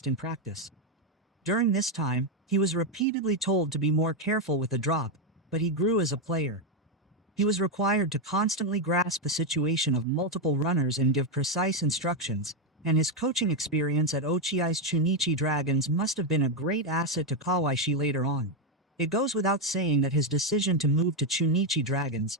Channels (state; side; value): normal; both; correlation 0.05